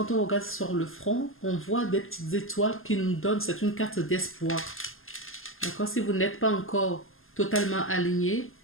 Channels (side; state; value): right; late; 0.60 ms